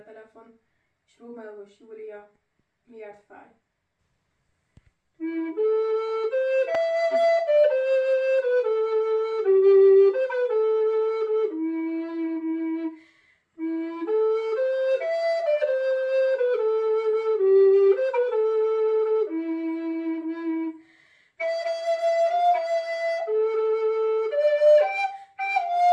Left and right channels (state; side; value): identical; both; correlation 1.00